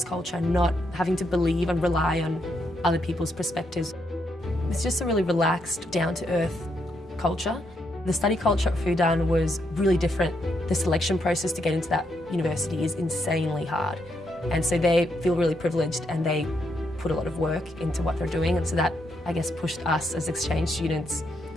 culture, not having to believe and rely on other people's perspectives. It's just a really relaxed, down-to-earth culture. The study culture at Fudan was really different. The selection process to get into that university is insanely hard. And so they feel really privileged and they put a lot of work into what they're doing. And so that, I guess, pushed us as exchange students.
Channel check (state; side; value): normal; both; correlation 0.78